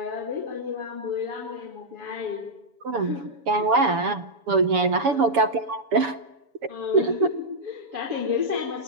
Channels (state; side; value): late; left; 7.1 ms